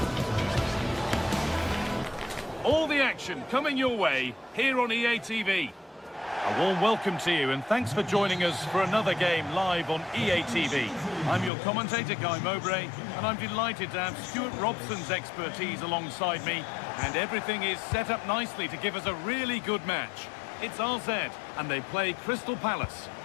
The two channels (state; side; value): drops out; right; at 11.5 s